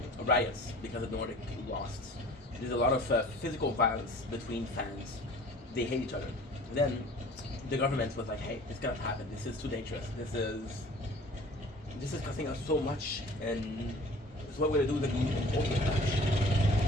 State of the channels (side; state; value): both; normal; correlation 0.47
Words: riots because the Nordic lost. There's a lot of physical violence between fans. They hate each other. Then the government was like, "Hey, this cannot happen. This is too dangerous. This is costing us so much, and so what we're gonna do is an ultimate match.